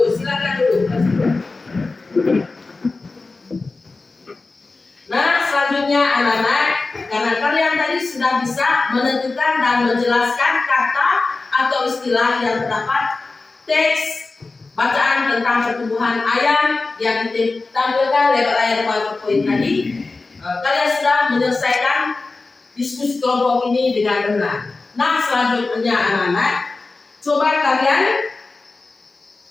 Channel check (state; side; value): quieter; right; 3.7 dB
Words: Silakan dulu kelas 2. Nah, selanjutnya anak-anak, karena kalian tadi sudah bisa menentukan dan menjelaskan kata atau istilah yang terdapat teks bacaan tentang pertumbuhan ayam yang ditampilkan lewat layar PowerPoint tadi, kalian sudah menyelesaikan diskusi kelompok ini dengan benar. Nah, selanjutnya anak-anak, coba kalian